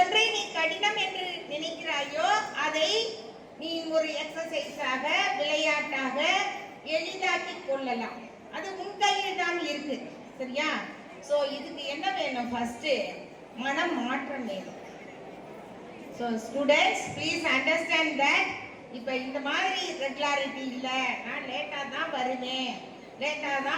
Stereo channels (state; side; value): identical; both; correlation 1.00